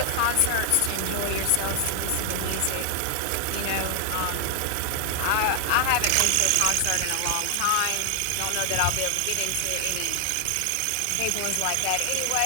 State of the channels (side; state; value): both; different; correlation 0.00